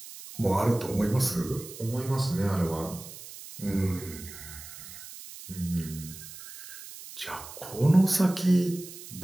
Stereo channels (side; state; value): right; noise; hiss, 14 dB below the sound